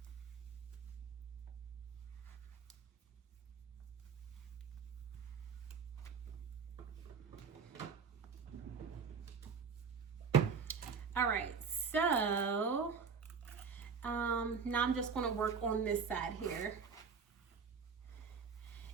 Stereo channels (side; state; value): left; quieter; 5.8 dB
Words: All right, so now I'm just going to work on this side here.